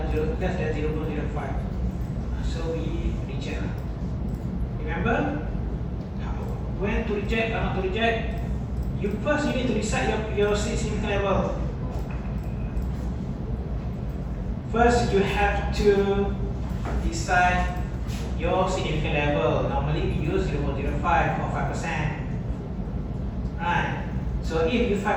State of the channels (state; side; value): identical; both; correlation 1.00